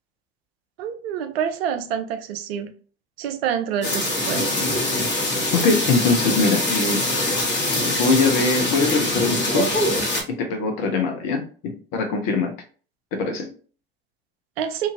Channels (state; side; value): normal; both; correlation 0.18